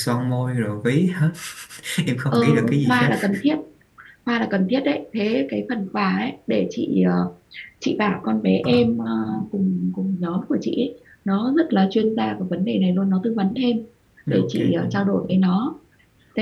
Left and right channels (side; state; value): both; identical; correlation 1.00